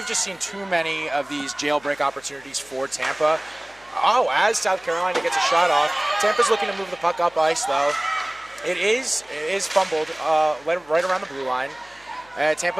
just seen too many of these jailbreak opportunities for Tampa. Oh, as South Carolina gets a shot off, Tampa's looking to move the puck up ice, though. It is fumbled right around the blue line.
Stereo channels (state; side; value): noise; left; hum, 29 dB below the sound